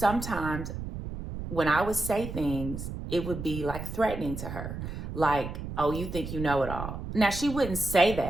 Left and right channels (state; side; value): noise; right; rumble, 7 dB below the sound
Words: when I would say things, it would be like threatening to her. Like, oh, you think you know it all. Now, she wouldn't say